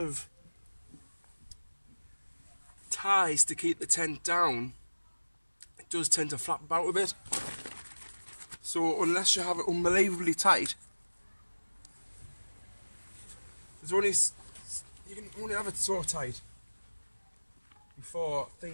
ties to keep the tent down, it does tend to flap about a bit. So unless you have it unbelievably tight, you can only have it so tight before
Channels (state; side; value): inverted; both; correlation -1.00